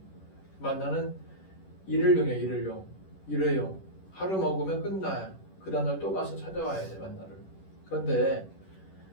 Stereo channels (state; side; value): late; right; 11 ms